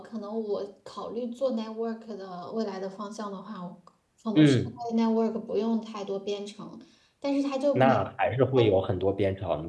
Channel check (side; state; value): both; identical; correlation 1.00